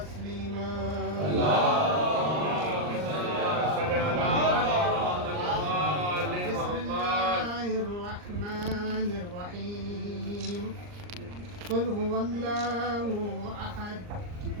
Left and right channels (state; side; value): late; left; 39 ms